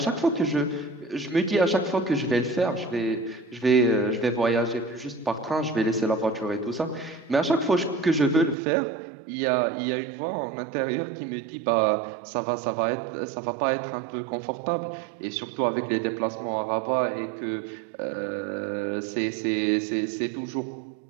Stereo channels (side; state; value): left; drops out; at 8.6 s